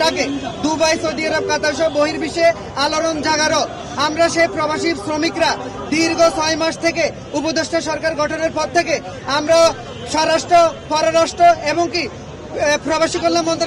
ডাকে দুবাই, সৌদি আরব, কাতার সহ বহির্বিশ্বে আলোড়ন জাগারো। আমরা সেই প্রবাসী শ্রমিকরা দীর্ঘ 6 মাস থেকে উপদেষ্টা সরকার গঠনের পর থেকে আমরা স্বরাষ্ট্র, পররাষ্ট্র এবং কি প্রবাসী কল্যাণ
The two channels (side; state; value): both; identical; correlation 1.00